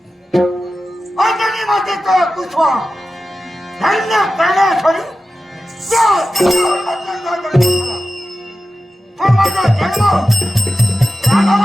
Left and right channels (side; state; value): both; normal; correlation 0.93